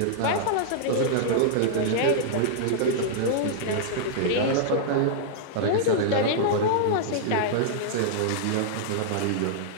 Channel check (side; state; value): both; different; correlation -0.02